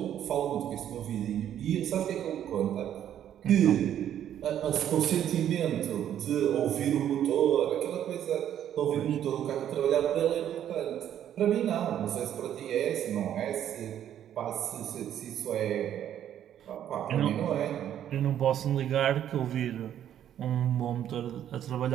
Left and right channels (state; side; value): quieter; left; 10.5 dB